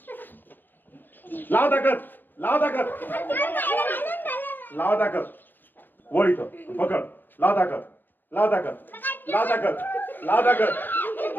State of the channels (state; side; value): late; right; 0.091 ms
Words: लाव ताकद. लाव ताकद. लाव ताकद. वळ इथं. पकड. लाव ताकद. लाव ताकद. लाव ताकद. लाव ताकद.